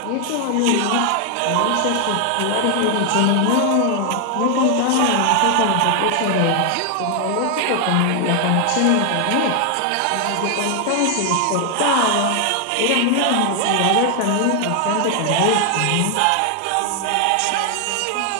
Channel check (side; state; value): both; different; correlation 0.00